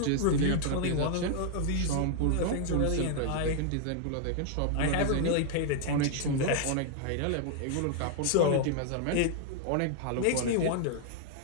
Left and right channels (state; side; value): different; both; correlation -0.01